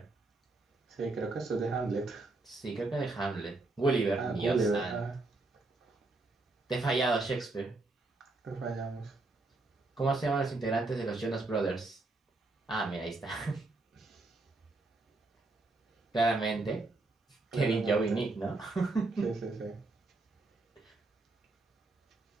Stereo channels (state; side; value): quieter; left; 3.2 dB